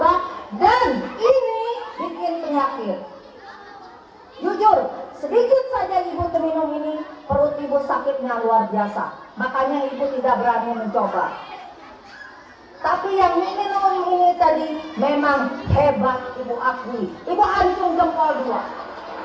dan ini bikin penyakit. Jujur, sedikit saja ibu minum ini, perut ibu sakitnya luar biasa. Makanya ibu tidak berani mencoba. Tapi yang minum ini tadi memang hebat, ibu akui. Ibu acung jempol 2.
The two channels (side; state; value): both; identical; correlation 1.00